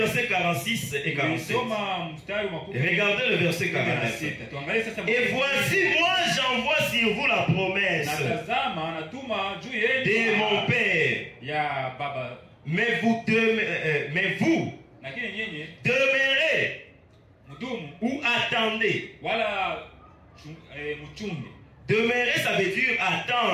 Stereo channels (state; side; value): identical; both; correlation 1.00